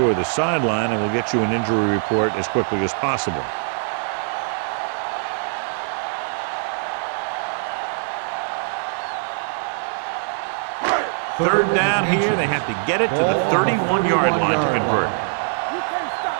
the sideline, and we'll get you an injury report as quickly as possible. Third down here. They have to get it to the 31-yard line to convert.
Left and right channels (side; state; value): left; silent; 64 dB below the other